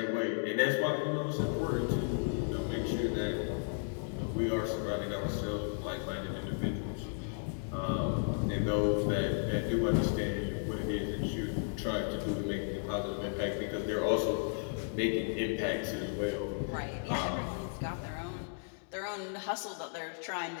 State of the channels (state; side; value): silent; right; 55 dB below the other